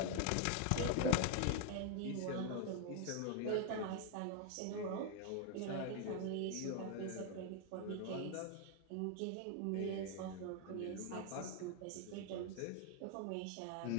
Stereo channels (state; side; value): different; both; correlation 0.00